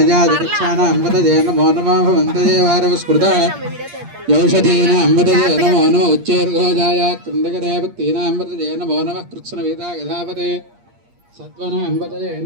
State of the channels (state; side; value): late; left; 8.6 ms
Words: నమో నమో భవంతయే వారవస్కృత యౌషధీనాంబతజే నమో నమో ఉచ్చేర్ఘోజాయ కృందకదేవక్తీనాంబతజే నమో నమః కృత్స్నవేదా యథాపతే సత్వనాంబతజే